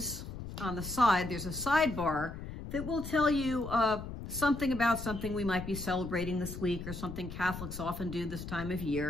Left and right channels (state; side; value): noise; left; rumble, 9 dB below the sound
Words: on the side, there's a sidebar that will tell you something about something we might be celebrating this week or something Catholics often do this time of